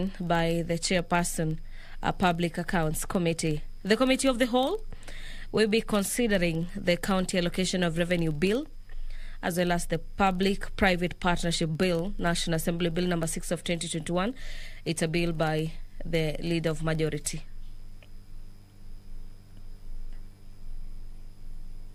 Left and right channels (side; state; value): both; identical; correlation 1.00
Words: by the chairperson, a Public Accounts Committee. The Committee of the Whole will be considering the County Allocation of Revenue Bill, as well as the Public-Private Partnership Bill, National Assembly Bill number 6 of 2021. It's a bill by the Leader of Majority.